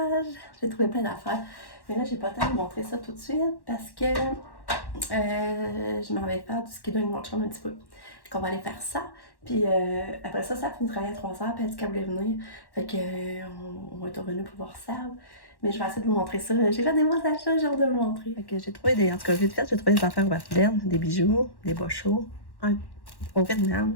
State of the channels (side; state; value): right; late; 1.1 ms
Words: j'ai trouvé plein d'affaires. Mais là, j'ai pas le temps de vous montrer ça tout de suite, parce que je m'en vais faire du skido avec mon chum un petit peu. Fait qu'on va aller faire ça, puis après ça, ça finit de travailler à 3h, puis elle dit qu'elle voulait venir. Fait que, on va être revenu pour voir ça. Mais je vais essayer de vous montrer ça. J'ai fait des bons achats, j'ai hâte de vous montrer. Fait que j'ai trouvé en tout cas, vite fait, j'ai trouvé des affaires Warden, des bijoux, des bas chauds, au